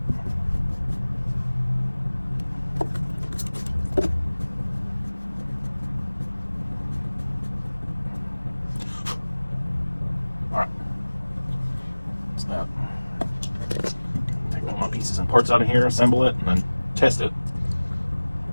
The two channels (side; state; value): both; inverted; correlation -1.00